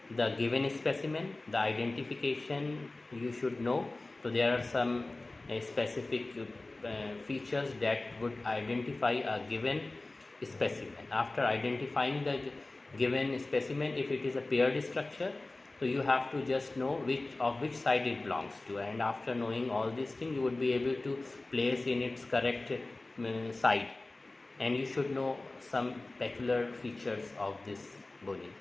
the given specimen. The identification you should know. So there are some specific features that would identify a given specimen. After identifying the given specimen, if it is a paired structure, so you have to just know which side it belongs to, and after knowing all these things, you would be able to place in its correct side, and you should know some peculiar features of this bony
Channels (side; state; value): right; quieter; 3.0 dB